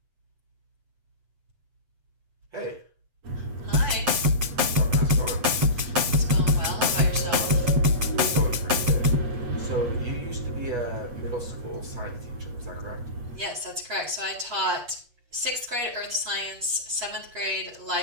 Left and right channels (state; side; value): late; left; 8.2 ms